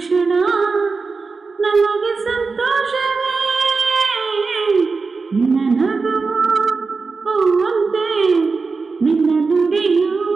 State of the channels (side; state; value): left; quieter; 4.4 dB